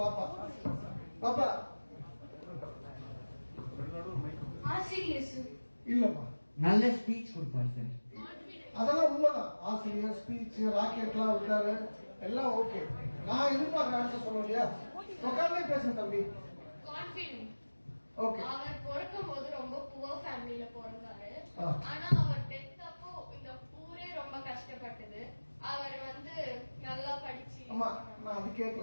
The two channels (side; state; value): both; inverted; correlation -1.00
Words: பாப்பா பாப்பா ஆசிரியர் இல்லப்பா, நல்ல ஸ்பீச் கொடுப்பார் சார். அதெல்லாம் உண்மைதான். ஆசிரியர் ஸ்பீச் ராக்கெட்லாம் விட்டாரு, எல்லாம் ஓகே. நான் எதிர்பார்க்க ஆன்சர் சொல்ல இல்லையா? உட்கார்ந்தே பேசுங்க தம்பி. கான்ஃபிடன்ட். ஓகே. அவர் பிறக்கும் போது ரொம்ப புவர் ஃபேமிலில பிறந்தாரு. ஆனா அவர் டெத் அப்போ இந்த ஊரே ரொம்ப கஷ்டப்பட்டது. அவர் வந்து நல்லா படிச்சு. அம்மா, நான் அது